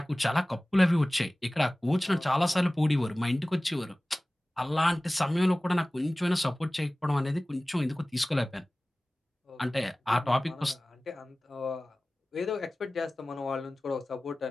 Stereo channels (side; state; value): both; normal; correlation 0.98